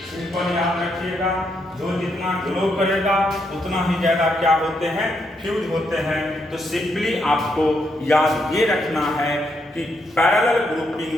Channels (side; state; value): both; normal; correlation 0.78